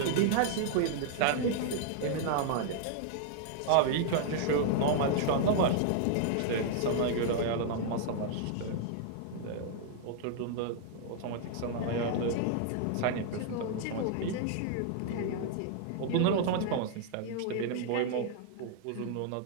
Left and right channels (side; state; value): both; different; correlation -0.01